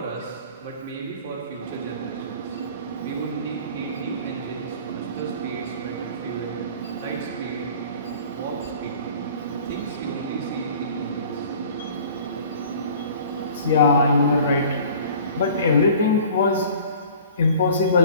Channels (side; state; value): both; inverted; correlation -0.47